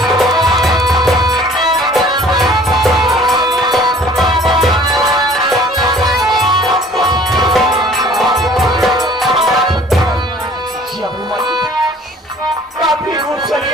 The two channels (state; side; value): normal; both; correlation 0.51